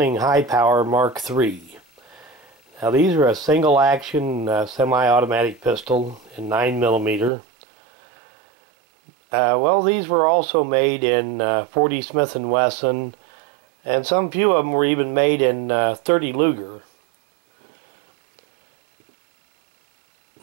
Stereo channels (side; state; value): left; drops out; at 7.3 s